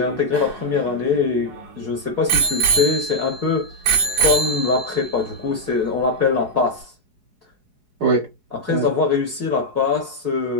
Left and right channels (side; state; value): left; late; 4.8 ms